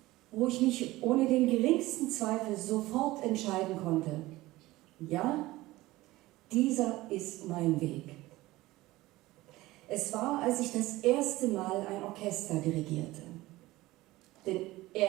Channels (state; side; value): quieter; left; 18.4 dB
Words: wo ich mich ohne den geringsten Zweifel sofort entscheiden konnte. Ja, dieser ist mein Weg. Es war, als ich das erste Mal ein Orchester dirigierte. Denn